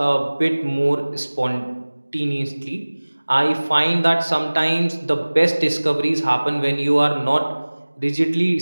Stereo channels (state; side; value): inverted; both; correlation -1.00